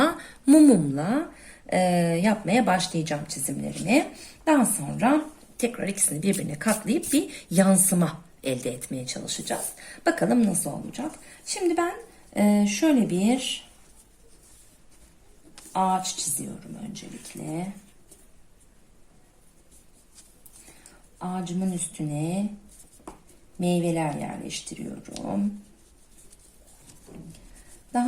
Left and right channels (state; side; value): identical; both; correlation 1.00